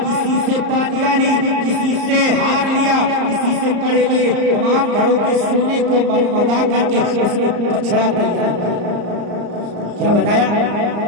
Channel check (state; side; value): late; left; 34 ms